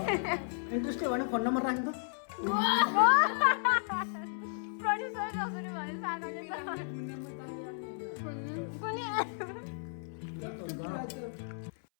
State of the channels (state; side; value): silent; right; 55 dB below the other